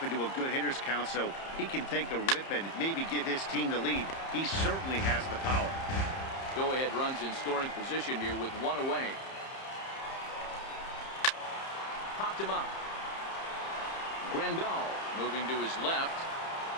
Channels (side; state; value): right; late; 30 ms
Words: into a good hitter's count so he can take a rip and maybe give his team the lead. He certainly has the power. Go-ahead runs in scoring position here with 1 away. Popped him up. Grandal moving to his left.